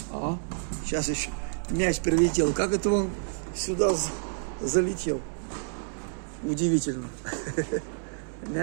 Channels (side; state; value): left; silent; 59 dB below the other